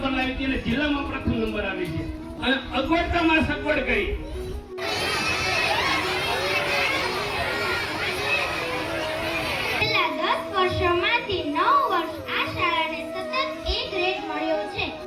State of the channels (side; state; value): both; identical; correlation 1.00